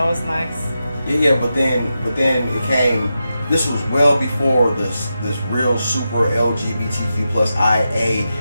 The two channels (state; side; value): inverted; both; correlation -0.89